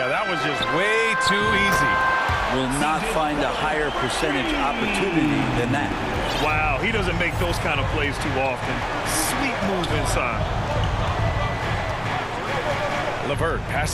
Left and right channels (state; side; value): identical; both; correlation 1.00